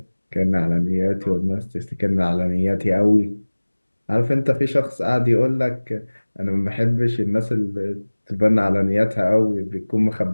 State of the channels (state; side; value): inverted; both; correlation -1.00